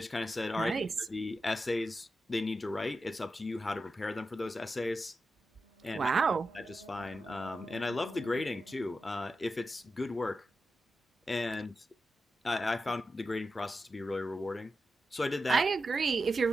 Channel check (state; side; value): normal; both; correlation 0.90